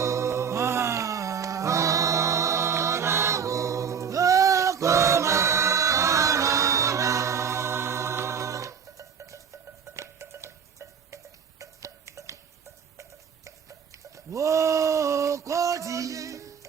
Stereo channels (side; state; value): left; quieter; 7.0 dB